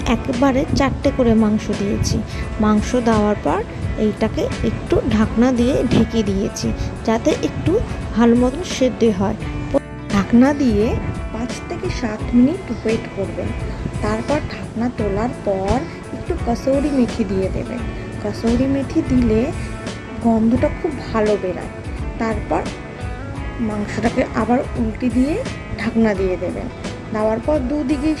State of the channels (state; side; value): identical; both; correlation 1.00